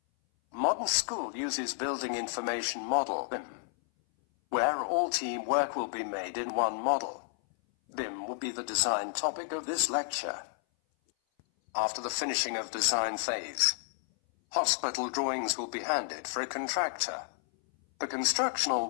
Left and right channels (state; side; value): silent; right; 57 dB below the other